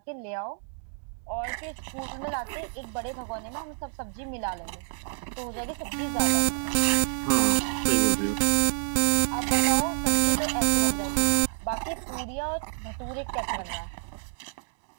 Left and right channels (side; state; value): left; silent; digital silence